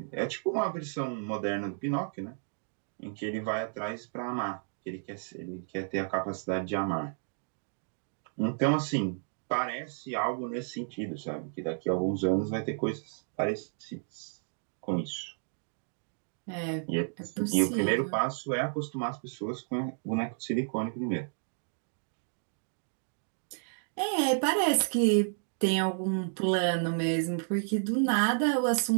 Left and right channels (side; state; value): left; silent; digital silence